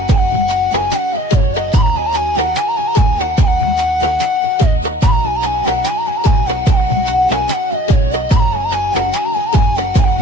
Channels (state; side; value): normal; both; correlation 0.50